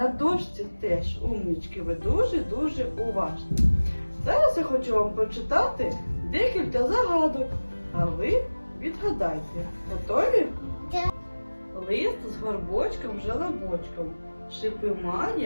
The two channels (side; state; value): both; inverted; correlation -1.00